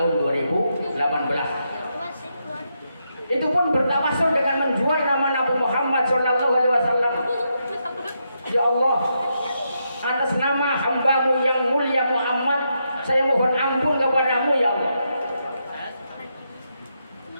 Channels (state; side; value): inverted; both; correlation -0.82